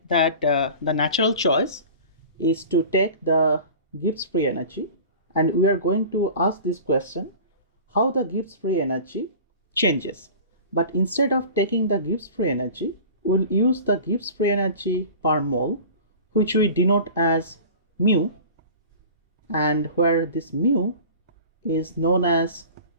that the natural choice is to take the Gibbs free energy, and we are going to ask this question, how the Gibbs free energy changes. But instead of taking the Gibbs free energy, we'll use the Gibbs free energy per mole, which we denote as mu, and where this mu is known as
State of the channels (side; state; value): both; inverted; correlation -0.39